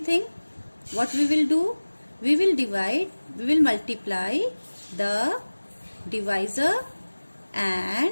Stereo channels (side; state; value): both; inverted; correlation -1.00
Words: thing. What we will do? We will multiply the divisor